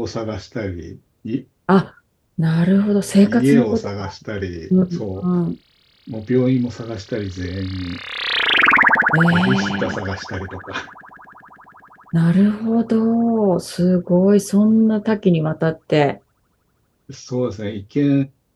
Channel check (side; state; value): both; identical; correlation 1.00